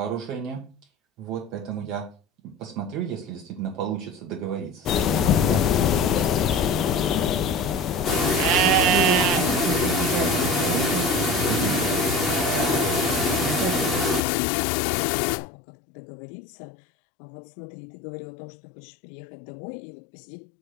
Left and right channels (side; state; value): right; drops out; at 14.2 s